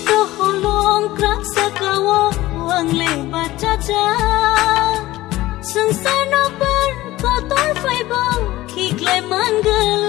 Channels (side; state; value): right; quieter; 17.0 dB